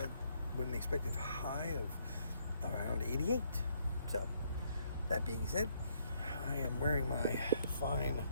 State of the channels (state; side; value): inverted; both; correlation -0.71